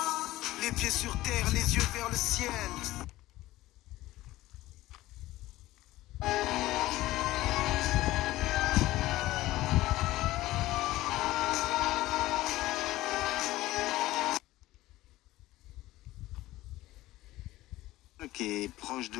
Les pieds sur terre, les yeux vers le ciel. Qui est proche de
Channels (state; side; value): quieter; right; 16.9 dB